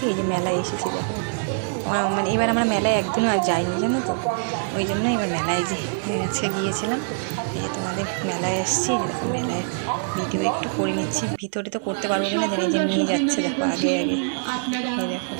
এই যে মেলায় এসেছি। দেখো মানে এবার আমরা মেলায় একদিনও আর যাইনি জানো তো, ওই জন্য এবার মেলায় আজকে গিয়েছিলাম। এই যে তোমাদের মেলায় এসেছি, মেলায় ভিডিও একটু করে নিচ্ছি। ভিতরে তো করতে পারবো না, যে নিয়ে যাচ্ছে দেখো আগে আগে, দেখো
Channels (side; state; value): left; silent; 63 dB below the other